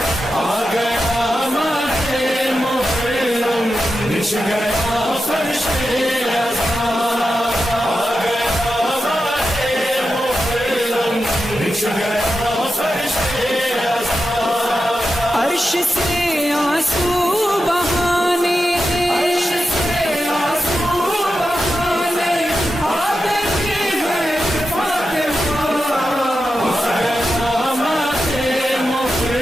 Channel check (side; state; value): both; normal; correlation 0.90